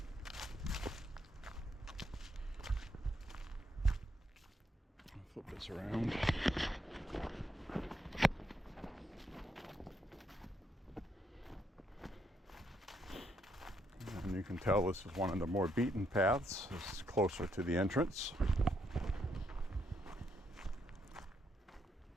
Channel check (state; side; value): normal; both; correlation 0.76